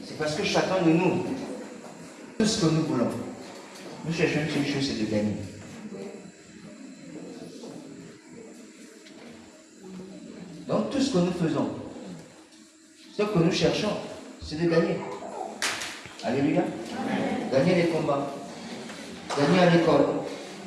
C'est parce que chacun de nous, tout ce que nous voulons, nous cherchons une seule chose, c'est de gagner. Donc tout ce que nous faisons, ce que nous cherchons, c'est de gagner. Alléluia. Amen. Gagner les combats, gagner à l'école,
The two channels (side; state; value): both; identical; correlation 1.00